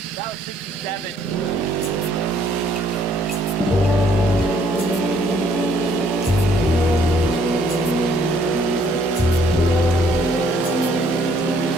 that was 67.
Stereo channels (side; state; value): both; normal; correlation 0.64